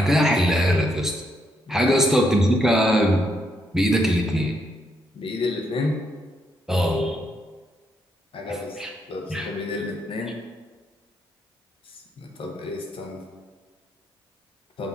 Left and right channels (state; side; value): normal; both; correlation 0.77